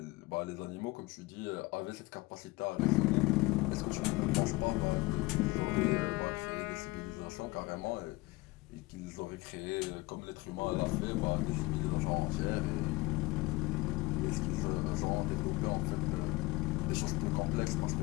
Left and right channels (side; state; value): right; quieter; 21.8 dB